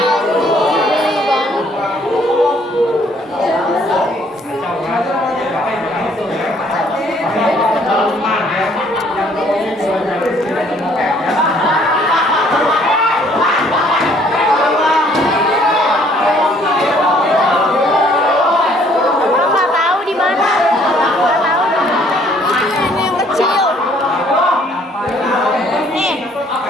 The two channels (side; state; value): both; normal; correlation 0.62